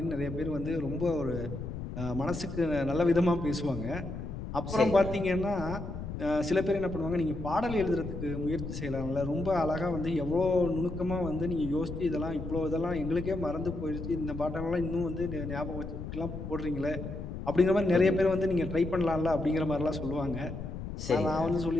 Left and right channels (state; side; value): noise; left; rumble, 7 dB below the sound